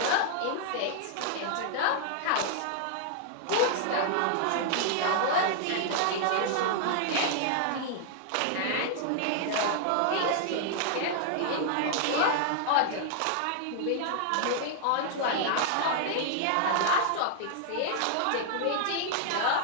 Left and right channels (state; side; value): different; both; correlation -0.01